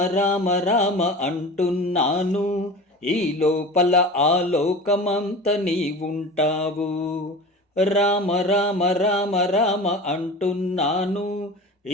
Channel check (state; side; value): normal; both; correlation 0.34